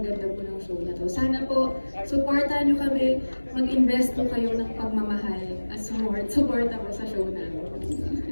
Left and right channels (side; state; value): both; inverted; correlation -1.00